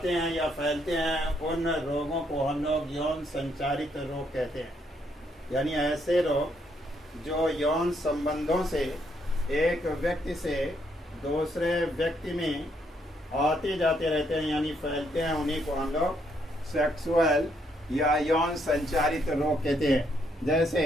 हैं या फैलते हैं, उन रोगों को हम लोग यौन संचारित रोग कहते हैं। यानी ऐसे रोग जो यौन संबंधों से एक व्यक्ति से दूसरे व्यक्ति में आते जाते रहते हैं, यानी फैलते हैं, उन्हीं को हम लोग सेक्सुअल या यौन संचारित रोग कहते हैं।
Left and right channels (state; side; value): normal; both; correlation 0.73